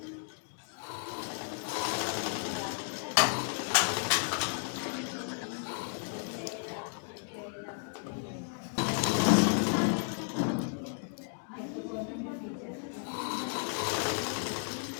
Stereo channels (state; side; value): silent; right; 55 dB below the other